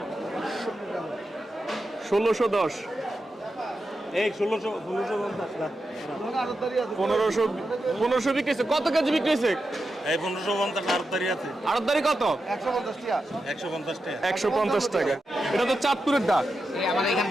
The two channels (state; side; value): normal; both; correlation 0.89